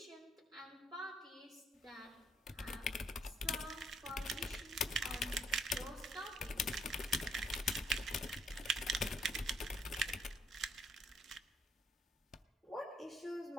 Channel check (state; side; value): normal; both; correlation 0.69